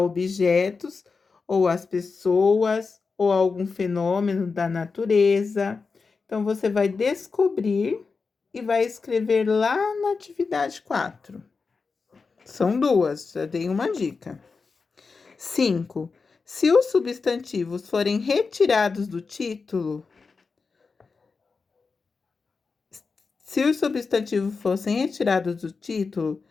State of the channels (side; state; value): right; quieter; 4.6 dB